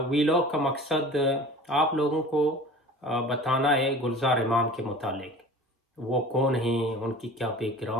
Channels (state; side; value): normal; both; correlation 0.41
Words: ویلاگ کا مقصد آپ لوگوں کو بتانا ہے گلزار امام کے متعلق۔ وہ کون ہیں، ان کی کیا بیک